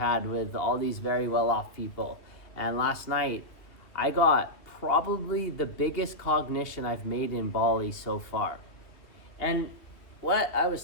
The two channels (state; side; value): late; right; 2.6 ms